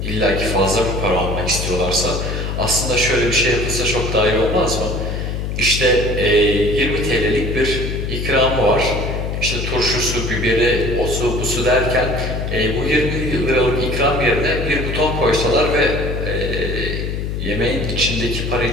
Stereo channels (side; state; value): left; noise; hum, 3 dB below the sound